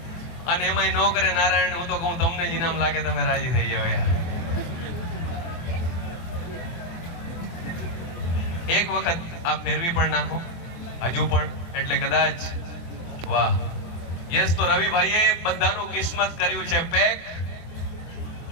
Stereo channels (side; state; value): right; late; 24 ms